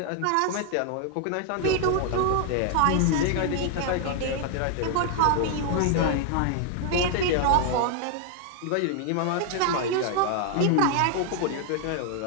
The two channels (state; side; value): different; both; correlation 0.00